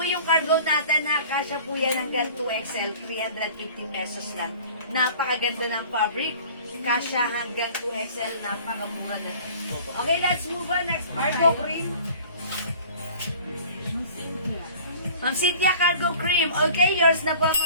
yung cargo natin, ha? Kasya po yan hanggang 2XL, 350 pesos lang. Napakaganda ng fabric. Kasya hanggang 2XL, napakamura na. Okay, let's move on. Next, Cargo Cream. Ma'am Cynthia, cargo cream. Okay, yours na po,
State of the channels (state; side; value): inverted; both; correlation -0.46